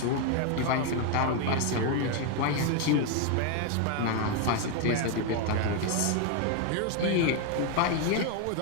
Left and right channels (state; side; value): different; both; correlation 0.01